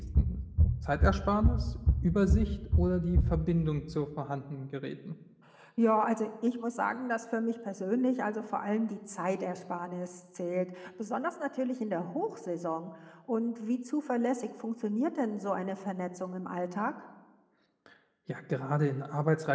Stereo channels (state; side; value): identical; both; correlation 1.00